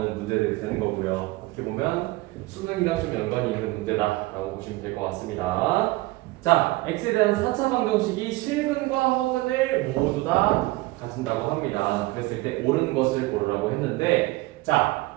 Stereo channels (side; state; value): left; quieter; 20.4 dB